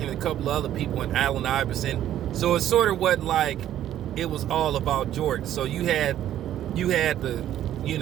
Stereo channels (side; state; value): left; quieter; 11.8 dB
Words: and a couple of other people, and Allen Iverson. So it sort of wasn't like it was all about Jordan. So you had the,